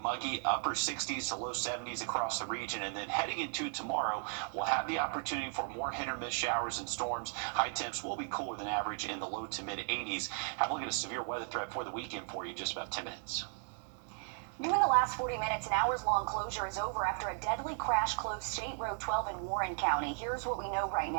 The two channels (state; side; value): silent; left; 54 dB below the other